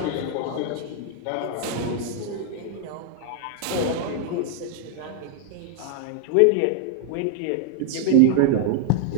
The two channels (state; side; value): different; both; correlation 0.00